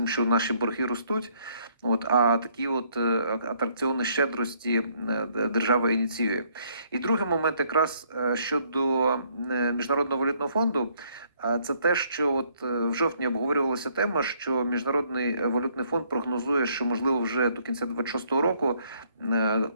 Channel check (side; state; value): both; inverted; correlation -0.67